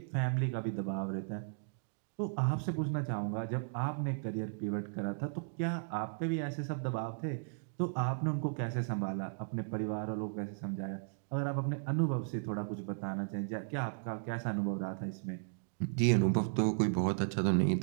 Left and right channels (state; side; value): silent; left; digital silence